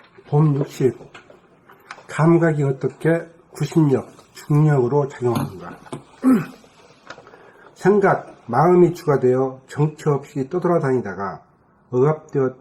법 60. 감각이 어떻게 구심력, 중력으로 작용하는가? 생각, 마음이 주가 되어 정처 없이 떠돌아다니다가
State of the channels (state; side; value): identical; both; correlation 1.00